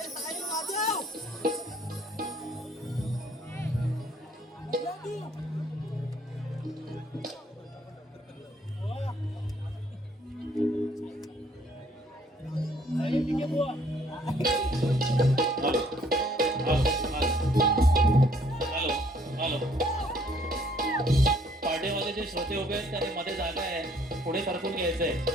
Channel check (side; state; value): both; normal; correlation 0.63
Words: साहिल वाजव. पार्टीमध्ये जे श्रोते उभे आहेत त्यांनी मध्ये जागा आहे, पुढे सरकून घ्यायचंय.